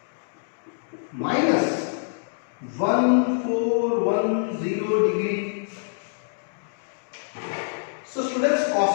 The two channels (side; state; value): right; silent; digital silence